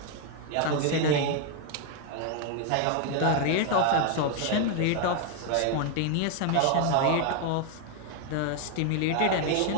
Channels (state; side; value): different; both; correlation 0.01